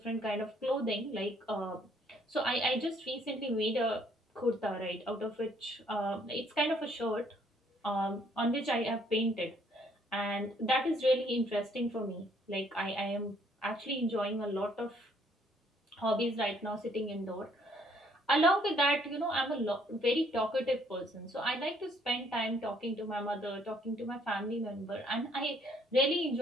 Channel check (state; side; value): normal; both; correlation 0.65